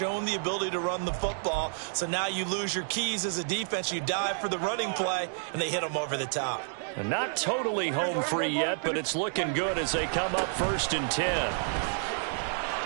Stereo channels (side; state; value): left; silent; digital silence